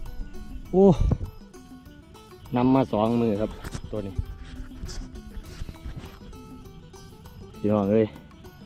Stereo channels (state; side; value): identical; both; correlation 1.00